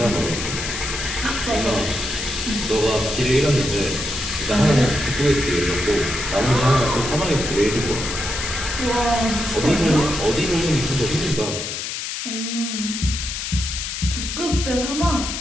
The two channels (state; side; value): noise; left; hiss, 5 dB below the sound